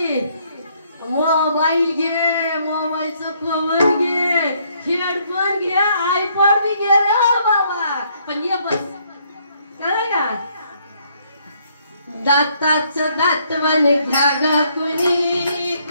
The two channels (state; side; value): inverted; both; correlation -0.69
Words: मोबाईल घे, मोबाईलचं कवर घे, हेडफोन घे, आयपॉड बी घे रे बाबा. पण ये बस कळलं का. दाताचं दातवन घ्या ग कुणी,